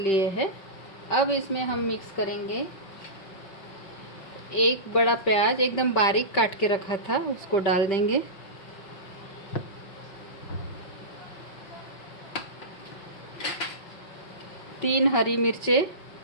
हैं। अब इसमें हम मिक्स करेंगे एक बड़ा प्याज एकदम बारीक काट के रखा था, उसको डाल देंगे। तीन हरी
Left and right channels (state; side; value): late; right; 5.2 ms